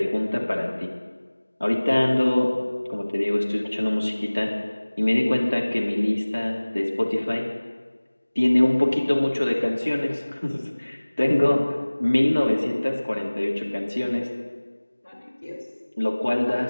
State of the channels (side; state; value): both; inverted; correlation -1.00